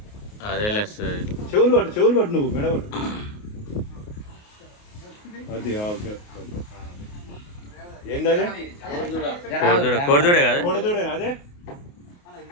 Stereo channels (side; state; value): right; late; 28 ms